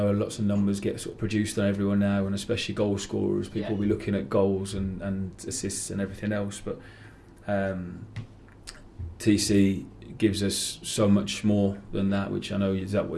lots of numbers get sort of produced on everyone now, and especially goal scorers. People will be looking at goals and assists and everything else, but TC gives us so much more than that, which I know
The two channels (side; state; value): both; identical; correlation 1.00